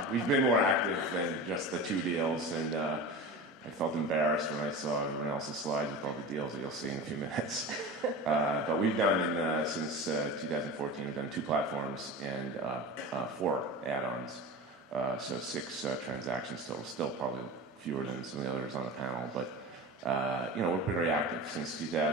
we've been more active than just the 2 deals, and I felt embarrassed when I saw everyone else's slides with all the deals that you'll see in a few minutes. But we've done, since 2014, we've done 2 platforms and 4 add-ons. So 6 transactions total, still probably fewer than some of the others on the panel. But, we're pretty active. Since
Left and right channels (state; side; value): normal; both; correlation 0.31